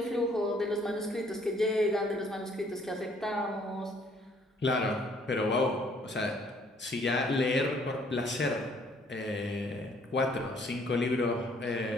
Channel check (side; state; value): both; normal; correlation 0.62